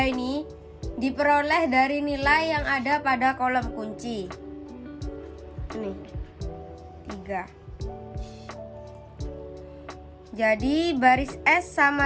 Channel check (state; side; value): identical; both; correlation 1.00